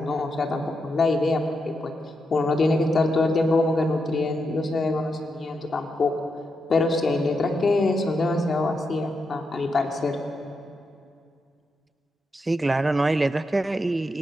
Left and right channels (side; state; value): both; normal; correlation 0.85